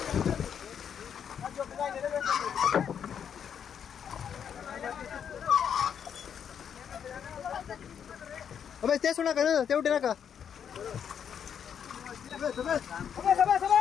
Sabes, te suena que no, te udah nak? Sabes, sabes. Sabes, sabes,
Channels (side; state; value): right; quieter; 8.0 dB